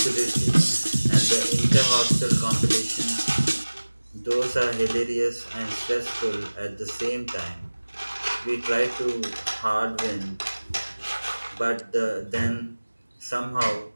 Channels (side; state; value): both; inverted; correlation -1.00